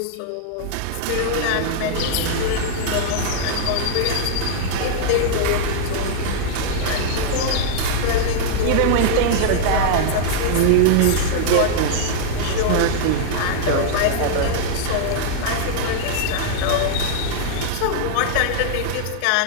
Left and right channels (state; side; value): different; both; correlation -0.01